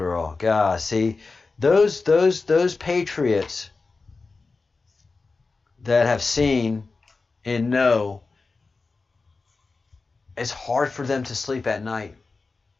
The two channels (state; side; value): quieter; right; 4.0 dB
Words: God, see, those patriots that have seen and know, it's hard for them to sleep at night.